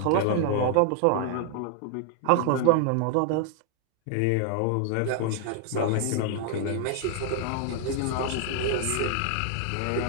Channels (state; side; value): different; both; correlation 0.00